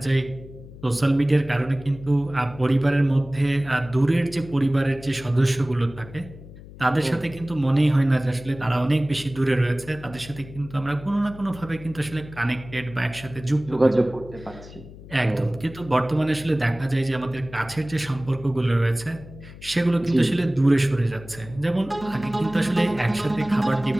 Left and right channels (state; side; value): noise; left; hum, 17 dB below the sound